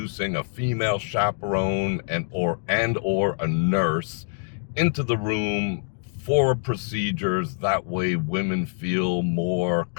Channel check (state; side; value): silent; right; digital silence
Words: a female chaperone and or a nurse into the room for procedures. That way women feel more